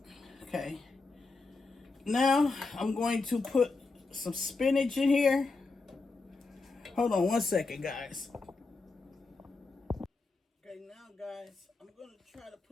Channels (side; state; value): right; quieter; 3.8 dB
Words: Okay. Now, I'm going to put some spinach in here. Hold on one second, guys. Okay, now, guys, I'm going to try to